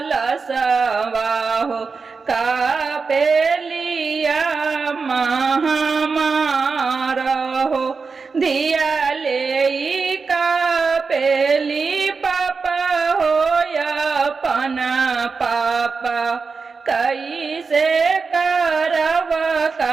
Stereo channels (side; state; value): left; quieter; 4.8 dB